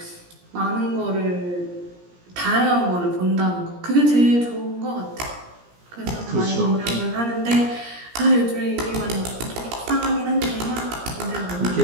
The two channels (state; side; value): late; left; 17 ms